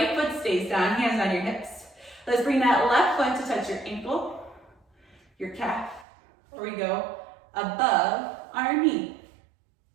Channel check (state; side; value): drops out; left; at 6.1 s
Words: foot stays down, hands on your hips. Let's bring that left foot to touch your ankle, your calf, or we go above our knee.